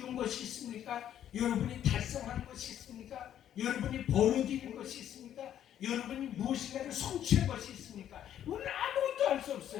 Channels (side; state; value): right; quieter; 10.6 dB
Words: 것이 있습니까? 여러분이 달성한 것이 있습니까? 여러분이 벌어들인 것이 있습니까? 여러분이 무엇인가를 성취한 것이 있습니까? 우리는 아무것도 할 수